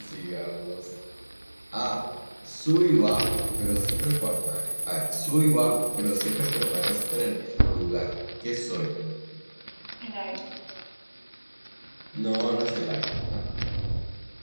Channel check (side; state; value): both; inverted; correlation -1.00